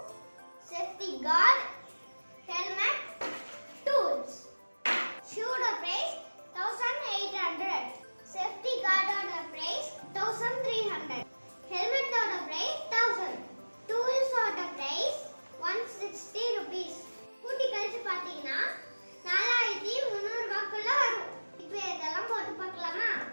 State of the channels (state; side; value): inverted; both; correlation -1.00